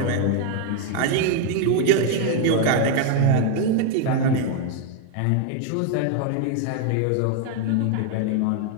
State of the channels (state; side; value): different; both; correlation 0.01